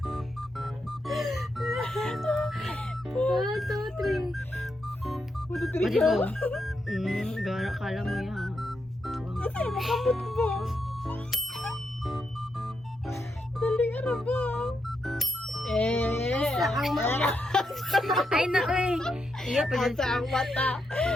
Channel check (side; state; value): both; normal; correlation 0.83